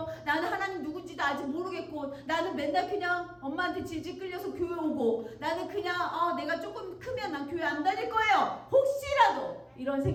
나는 하나님 누군지도 아직 모르겠고 나는 맨날 그냥 엄마한테 질질 끌려서 교회 오고 나는 그냥 내가 조금 크면 난 교회 안 다닐 거예요. 혹시라도 이런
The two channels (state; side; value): identical; both; correlation 1.00